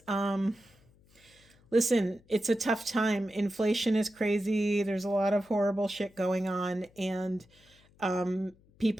Listen, it's a tough time. Inflation is crazy. There's a lot of horrible shit going on, and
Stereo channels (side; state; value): left; noise; hum, 30 dB below the sound